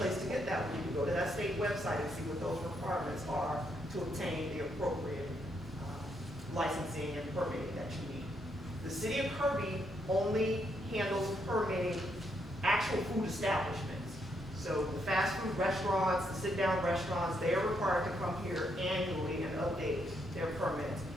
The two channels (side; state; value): both; normal; correlation 0.77